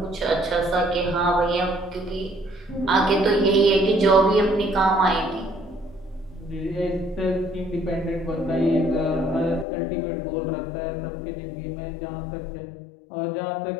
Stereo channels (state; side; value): drops out; right; at 9.7 s